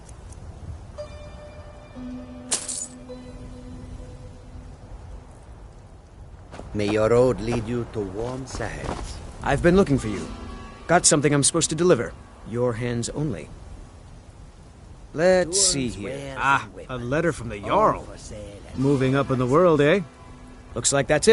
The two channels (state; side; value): identical; both; correlation 1.00